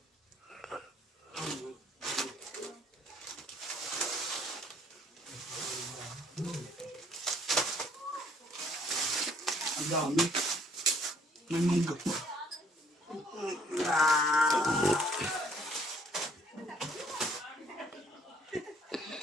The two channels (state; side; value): normal; both; correlation 0.62